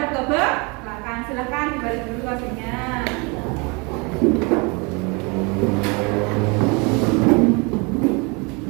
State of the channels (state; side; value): quieter; left; 29.7 dB